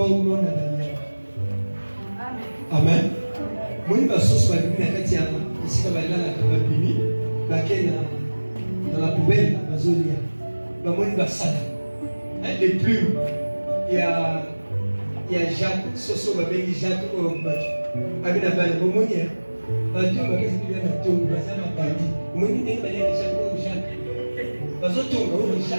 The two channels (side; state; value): both; inverted; correlation -1.00